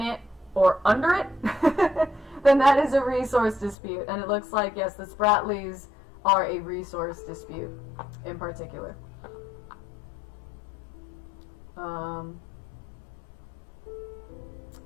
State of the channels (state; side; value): drops out; right; at 3.8 s